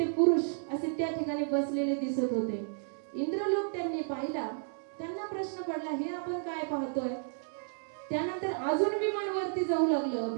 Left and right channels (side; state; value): left; silent; digital silence